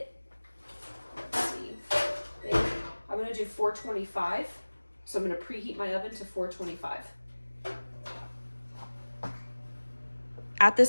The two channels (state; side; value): inverted; both; correlation -1.00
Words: Let's see. I'm gonna do 425. So I'm gonna preheat my oven to 425. At